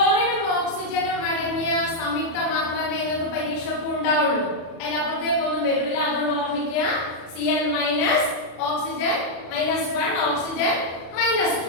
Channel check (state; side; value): late; right; 36 ms